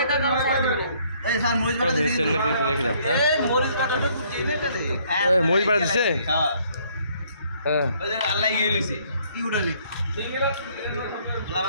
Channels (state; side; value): inverted; both; correlation -0.64